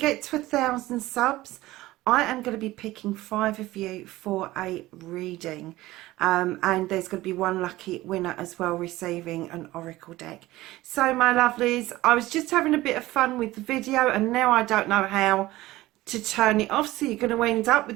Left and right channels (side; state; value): left; quieter; 17.6 dB